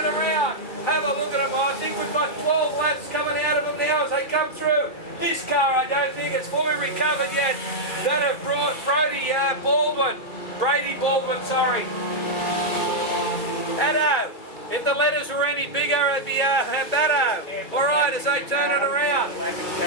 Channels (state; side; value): late; right; 2.3 ms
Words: around. Have a look at him. I think we've got 12 laps coming out of them now as they come through. This car, I don't think it's fully recovered yet. That have brought Brady Baldwin, sorry. Addo. If the letters were any bigger, it'd be Addo. All right, as they turn it around.